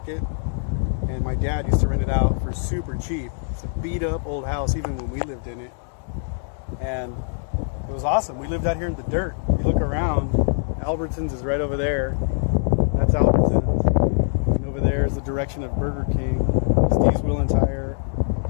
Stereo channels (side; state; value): right; silent; digital silence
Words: And my dad used to rent it out for super cheap. It's a beat up old house even when we lived in it. And it was awesome. We lived out here in the dirt. You look around, Albertsons is right over there. That's Albertsons. And over there is the direction of Burger King, Steve's Wheel and Tire,